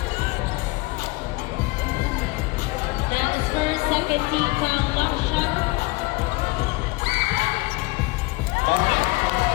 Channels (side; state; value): right; quieter; 23.0 dB